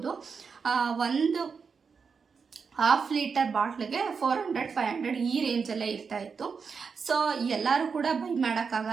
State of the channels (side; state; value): left; quieter; 5.6 dB